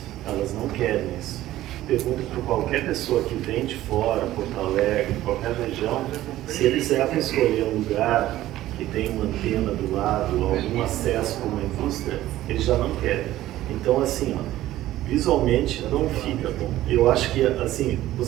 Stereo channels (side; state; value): left; quieter; 14.7 dB